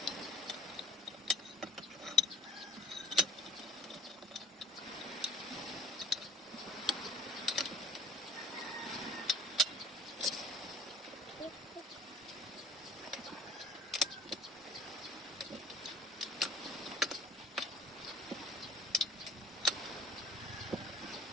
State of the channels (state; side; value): normal; both; correlation 0.47